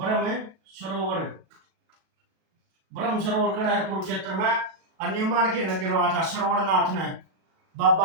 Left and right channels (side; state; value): left; late; 37 ms